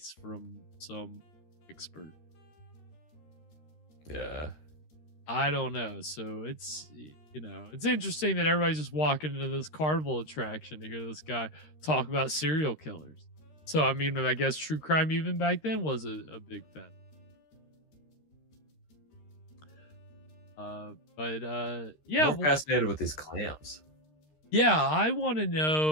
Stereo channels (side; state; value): right; late; 13 ms